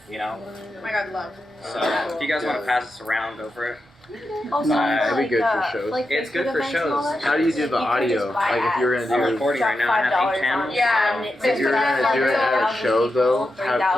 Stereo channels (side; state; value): both; normal; correlation 0.88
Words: Oh my God, love. So if you guys want to pass this around, go for it. Also, it'd be good for shows. It's good for shows. How do you do the audio? Like if you're gonna do I'm recording right now, I have 8 channels. Yeah. If you're gonna do it at a show though,